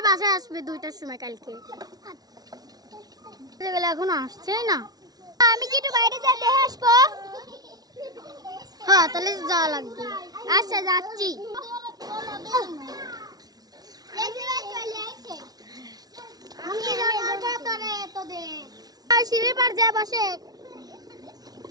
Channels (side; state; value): left; late; 0.19 ms